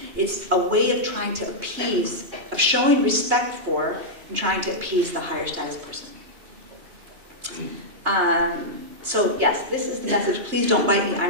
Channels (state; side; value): late; left; 2.7 ms